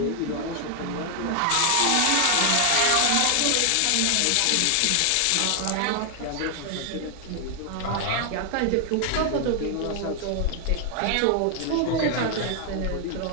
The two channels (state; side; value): different; both; correlation 0.00